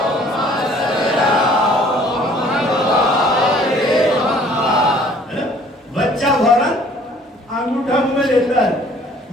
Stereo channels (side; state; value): both; normal; correlation 0.55